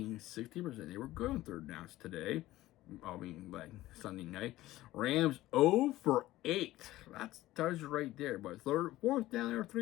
60%. They were good on third downs today. I mean, like Sunday night. Rams 0 for 8. That's tells you right there. But fourth down, they were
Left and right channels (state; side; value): quieter; right; 16.3 dB